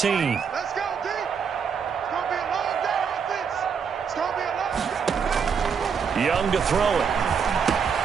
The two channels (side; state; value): left; quieter; 6.5 dB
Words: Let's go, D. Young to throw it.